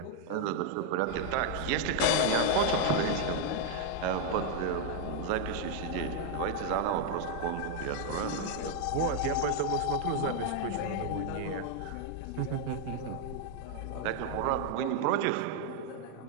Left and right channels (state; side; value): different; both; correlation 0.00